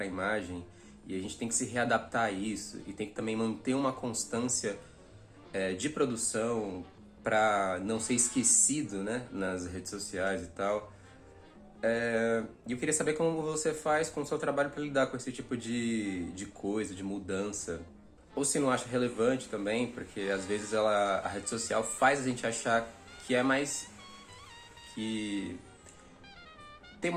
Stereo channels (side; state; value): both; identical; correlation 1.00